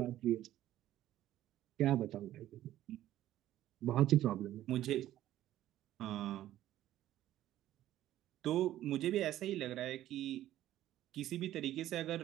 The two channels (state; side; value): quieter; left; 13.4 dB